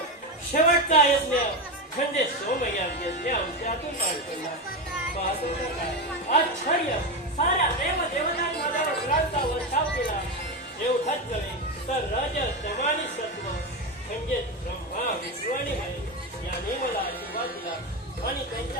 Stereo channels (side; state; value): both; normal; correlation 0.15